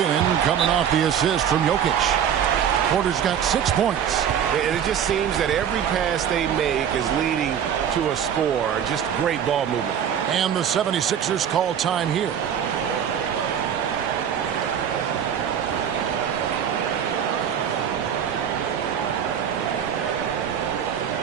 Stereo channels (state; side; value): quieter; left; 8.7 dB